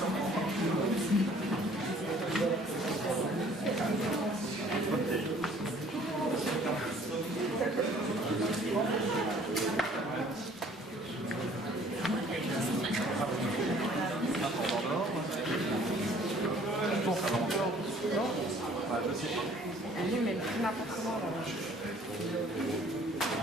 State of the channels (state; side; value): normal; both; correlation 0.55